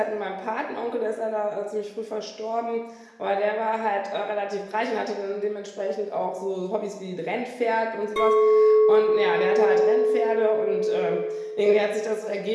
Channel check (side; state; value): both; identical; correlation 1.00